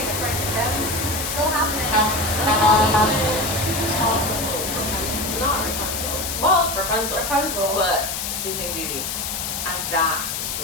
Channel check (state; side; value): noise; left; hiss, 3 dB below the sound